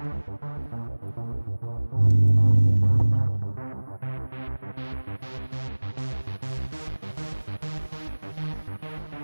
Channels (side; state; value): both; inverted; correlation -1.00